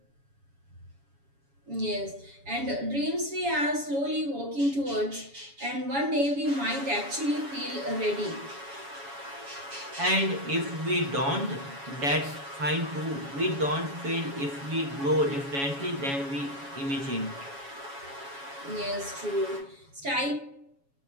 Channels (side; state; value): left; late; 7.2 ms